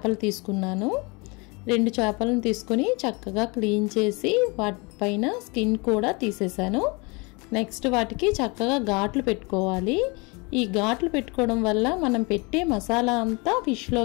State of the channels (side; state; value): right; quieter; 28.6 dB